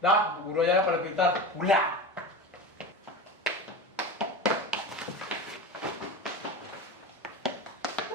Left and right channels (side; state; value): both; normal; correlation 0.26